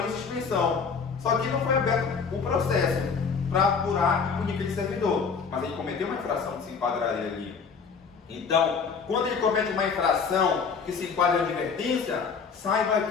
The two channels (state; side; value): quieter; right; 5.6 dB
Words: em suspensão. Só que não foi aberto o processo para apurar e punir aquele servidor. Mas ele cometeu uma infração que se enquadraria ali. Então, quando ele comete uma infração que se enquadra em advertência, saiba